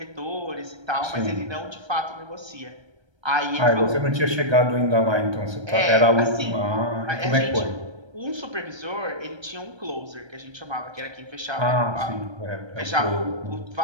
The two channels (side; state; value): left; late; 1.3 ms